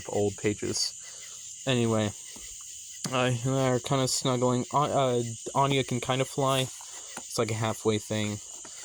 old pages. Anyway, they're kind of snuggling. Anya can kind of fly. It's like a halfway thing.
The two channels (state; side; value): identical; both; correlation 1.00